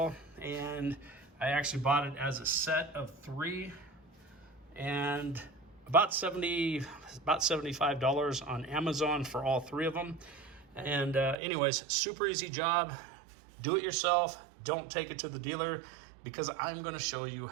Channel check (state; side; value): drops out; left; at 11.4 s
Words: and I actually bought it as a set of 3, and about $75 on Amazon for all 3 of them. And anyways, super easy job. Do it yourself. Don't take it to the dealer, because I'm going to show you